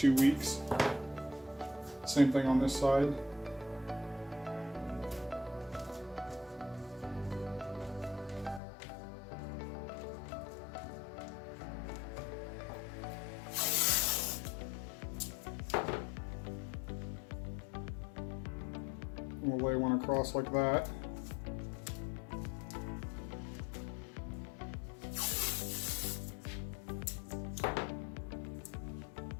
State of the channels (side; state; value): right; drops out; at 8.6 s